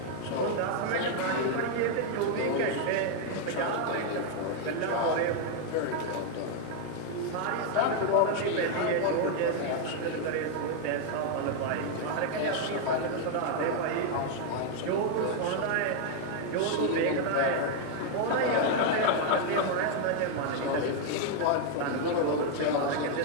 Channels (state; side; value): different; both; correlation 0.00